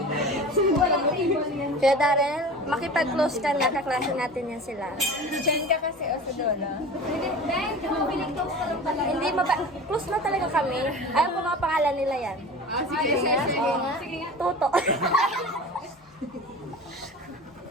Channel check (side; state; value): both; normal; correlation 0.36